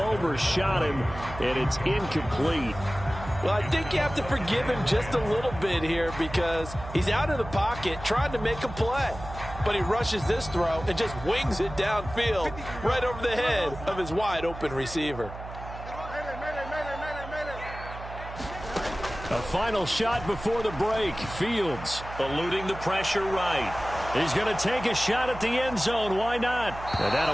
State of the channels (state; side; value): noise; right; hum, 12 dB below the sound